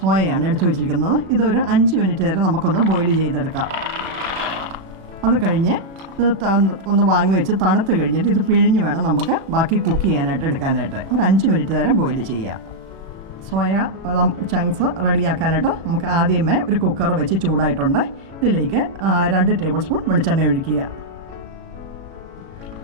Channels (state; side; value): late; left; 36 ms